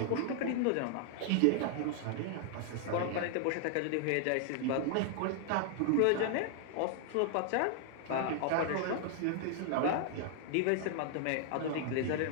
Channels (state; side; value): different; both; correlation 0.00